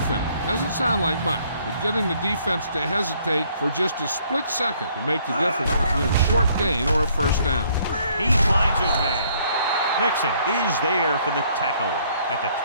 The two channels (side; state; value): both; inverted; correlation -0.64